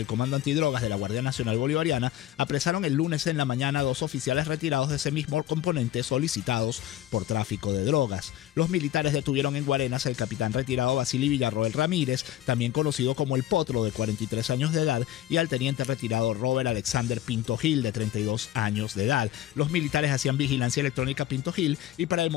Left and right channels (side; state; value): right; quieter; 12.9 dB